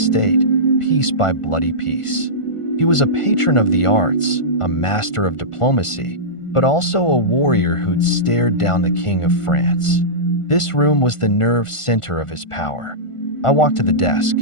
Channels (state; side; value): late; right; 1.5 ms